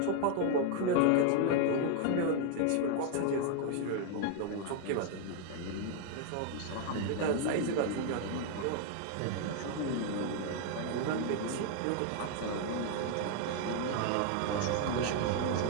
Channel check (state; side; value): different; both; correlation 0.00